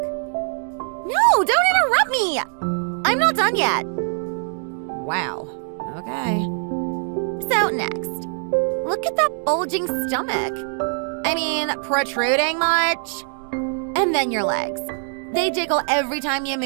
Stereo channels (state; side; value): silent; left; 58 dB below the other